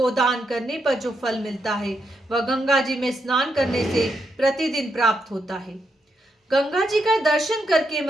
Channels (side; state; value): both; normal; correlation 0.81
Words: करने पर जो फल मिलता है, वह गंगा जी में स्नान करने से प्रतिदिन प्राप्त होता है। गंगा जी का दर्शन करके